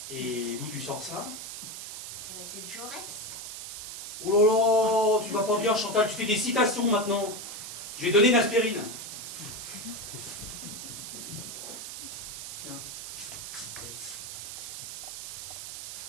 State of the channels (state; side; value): noise; right; hiss, 8 dB below the sound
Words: Et d'où tu sors ça? Eh ben, c'est de Jaurès. Oh là là, tu vas pas bien, Chantal, tu fais des citations maintenant. Je vais donner une aspirine. Tiens.